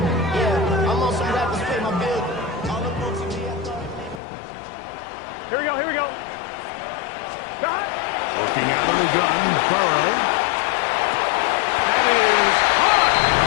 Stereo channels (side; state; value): right; drops out; at 4.2 s